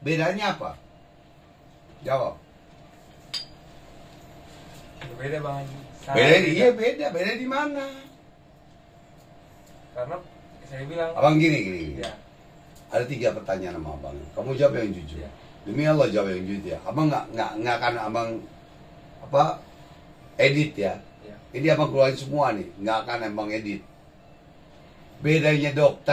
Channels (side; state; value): both; identical; correlation 1.00